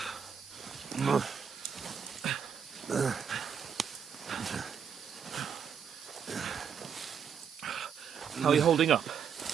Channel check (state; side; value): quieter; left; 7.4 dB